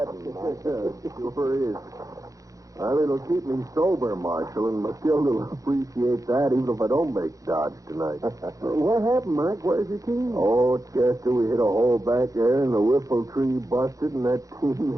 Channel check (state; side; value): late; left; 0.16 ms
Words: Mike. Sure is. Well, it'll keep me sober, Marshal, and Matilda will appreciate that even if I don't make Dodge tonight. What happened, Mike? Where's your team? Oh, Chester, we hit a hole back there, and the whiffle tree busted, and that